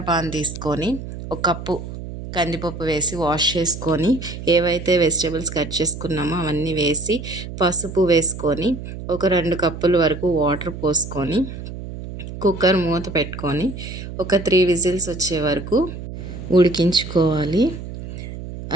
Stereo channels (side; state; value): right; noise; hum, 9 dB below the sound